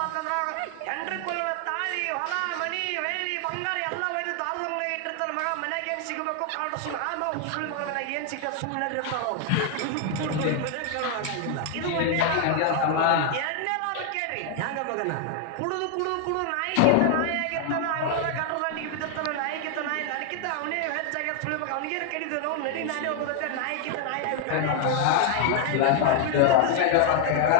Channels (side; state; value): both; different; correlation 0.00